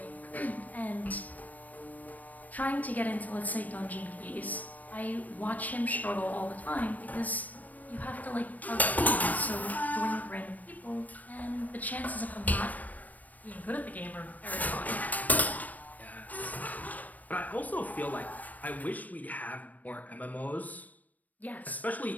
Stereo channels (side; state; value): right; late; 0.077 ms